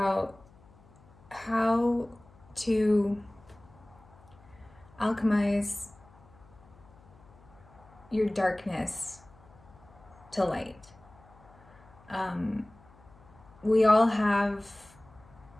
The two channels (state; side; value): noise; left; hum, 26 dB below the sound